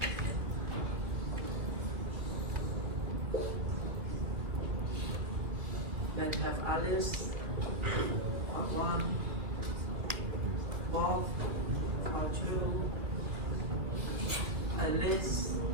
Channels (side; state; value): left; late; 2.4 ms